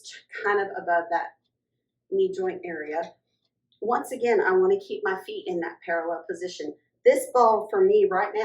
kind of above that knee joint area. Once again, I want to keep my feet in that parallel position. This ball for me right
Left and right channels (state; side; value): identical; both; correlation 1.00